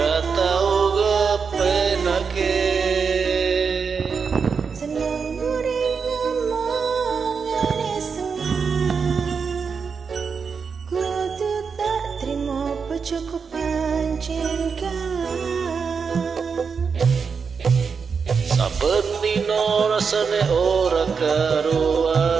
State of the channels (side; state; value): left; quieter; 5.7 dB